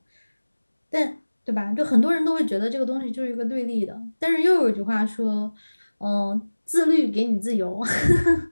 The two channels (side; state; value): both; inverted; correlation -1.00